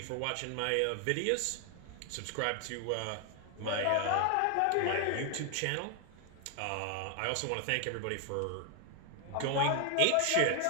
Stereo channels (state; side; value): different; both; correlation 0.00